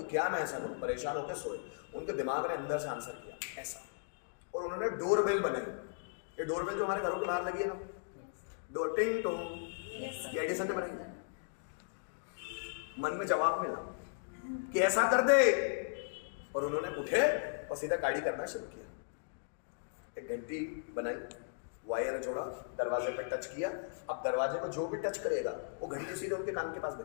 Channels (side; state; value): right; silent; digital silence